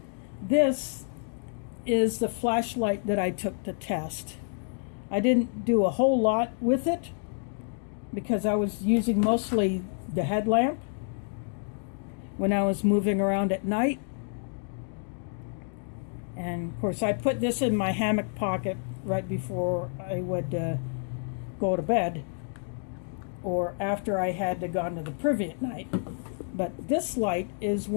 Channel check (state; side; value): silent; right; 59 dB below the other